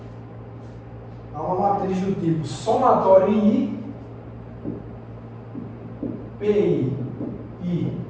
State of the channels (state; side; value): identical; both; correlation 1.00